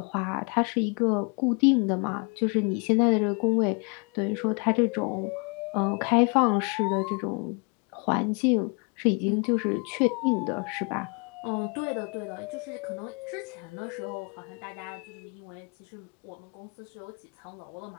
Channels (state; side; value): quieter; right; 34.5 dB